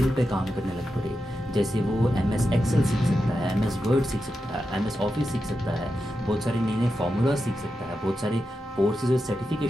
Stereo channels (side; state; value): both; normal; correlation 0.89